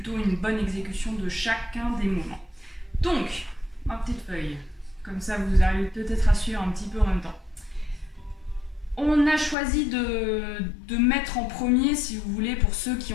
une bonne exécution de chacun des mouvements. Donc, ma petite feuille. Comme ça, vous arrivez peut-être à suivre un petit peu en même temps. On a choisi de mettre en premier, si vous voulez, pour ceux qui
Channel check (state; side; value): drops out; right; at 9.6 s